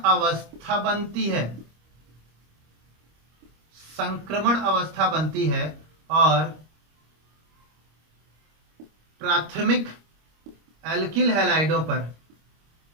अवस्था बनती है, संक्रमण अवस्था बनती है और प्राथमिक एल्किल हैलाइडों पर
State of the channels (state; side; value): late; left; 25 ms